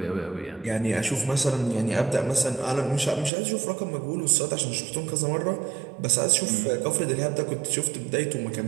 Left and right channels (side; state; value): left; drops out; at 3.3 s